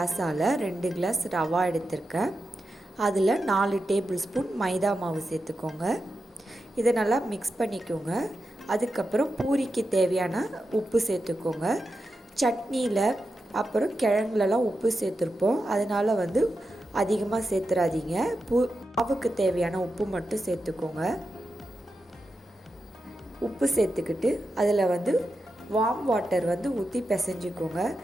2 கிளாஸ் ரவா எடுத்திருக்கேன். அதில் 4 டேபிள் ஸ்பூன் மைதா மாவு சேர்த்துக்கோங்க. இதை நல்லா மிக்ஸ் பண்ணிக்கோங்க. அதுக்கப்புறம் பூரிக்கு தேவையான உப்பு சேர்த்துக்கோங்க. சட்னியில் அப்புறம் கிழங்குலலாம் உப்பு சேர்த்துருப்போம், அதனால் அதிகமாக சேர்த்துறாதீங்க. மாவுக்கு தேவையான உப்பு மட்டும் சேர்த்துக்கோங்க. உப்பு சேர்த்துக்கிட்டு அதில் வார்ம் வாட்டர் ஊற்றி பிசைஞ்சிக்கோங்க.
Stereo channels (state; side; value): normal; both; correlation 0.89